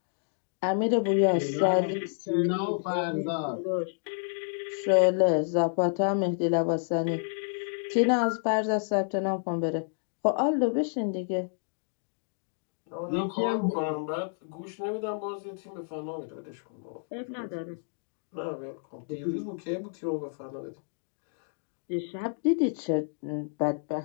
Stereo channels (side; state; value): right; silent; digital silence